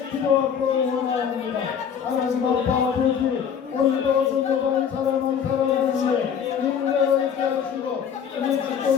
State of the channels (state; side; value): quieter; right; 7.7 dB